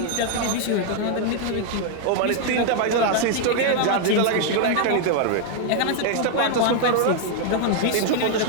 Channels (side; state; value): both; different; correlation 0.00